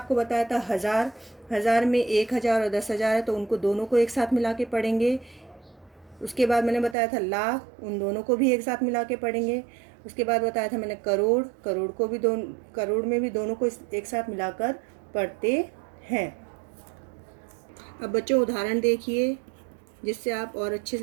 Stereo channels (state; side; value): drops out; left; at 7.0 s